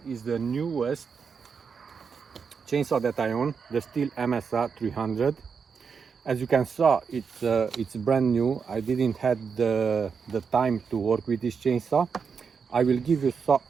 is the newest chainsaw that I own, the Stihl Msa 300. As you can see, it's brand new. I didn't have the time to work with this chainsaw. I will give you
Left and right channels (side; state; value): left; quieter; 6.0 dB